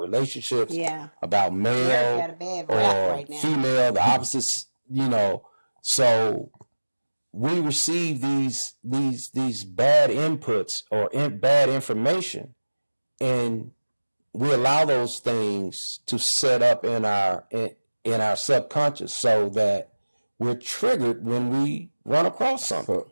about male or female, the opposites, so we receive these bad inputs or bad information, and we allow those things to set up in our subconscious so that we're triggered when we run across something.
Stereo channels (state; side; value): inverted; both; correlation -1.00